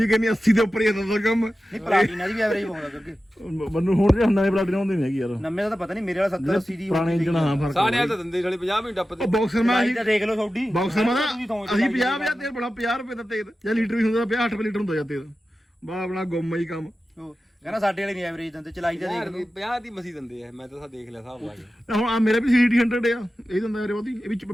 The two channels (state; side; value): normal; both; correlation 0.93